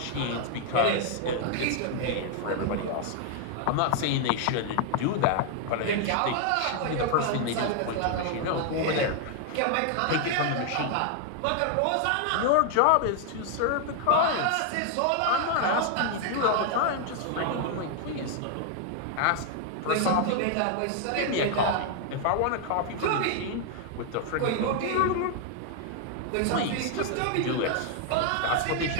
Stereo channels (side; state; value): both; different; correlation 0.00